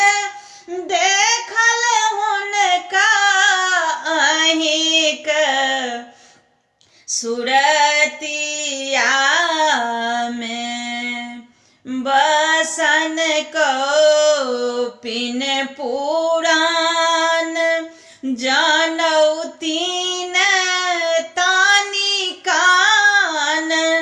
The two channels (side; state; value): both; identical; correlation 1.00